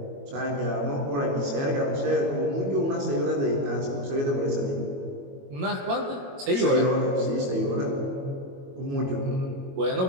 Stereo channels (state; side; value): late; left; 22 ms